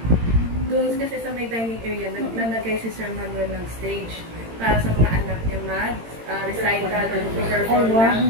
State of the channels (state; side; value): late; left; 18 ms